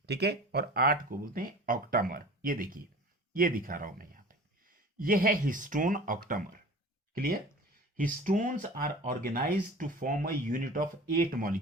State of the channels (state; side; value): normal; both; correlation 0.40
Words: ठीक है, और 8 को बोलते हैं ऑक्टामर। ये देखिए, ये दिखा रहा हूं मैं यहां पे, ये है histone octamer. Clear? Histones are organise to form a unit of 8